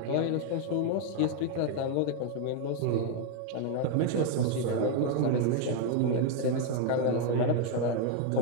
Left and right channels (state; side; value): different; both; correlation 0.01